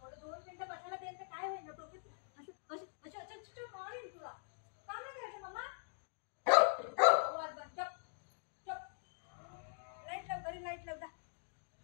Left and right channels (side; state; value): right; silent; digital silence